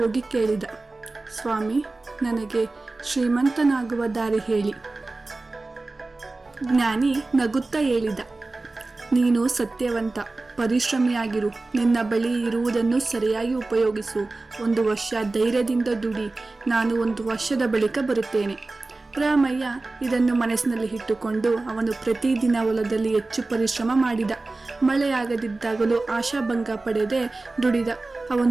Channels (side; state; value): left; quieter; 3.3 dB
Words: ಕೇಳಿದ, ಸ್ವಾಮಿ, ನನಗೆ ಶ್ರೀಮಂತನಾಗುವ ದಾರಿ ಹೇಳಿ. ಜ್ಞಾನಿ ನಗುತ್ತಾ ಹೇಳಿದ, ನೀನು ಸತ್ಯವಂತ, ಪರಿಶ್ರಮಿಯಾಗಿರು. ನಿನ್ನ ಬಳಿ ಇರುವುದನ್ನು ಸರಿಯಾಗಿ ಉಪಯೋಗಿಸು. 1 ವರ್ಷ ಧೈರ್ಯದಿಂದ ದುಡಿ. ನಾನು 1 ವರ್ಷದ ಬಳಿಕ ಬರುತ್ತೇನೆ. ರಾಮಯ್ಯ ಇದನ್ನು ಮನಸ್ಸಿನಲ್ಲಿ ಇಟ್ಟುಕೊಂಡು ಅವನು ಪ್ರತಿದಿನ ಹೊಲದಲ್ಲಿ ಹೆಚ್ಚು ಪರಿಶ್ರಮ ಮಾಡಿದ. ಮಳೆಯಾಗದಿದ್ದಾಗಲೂ ಆಶಾಭಂಗ ಪಡೆದೇ ದುಡಿದ.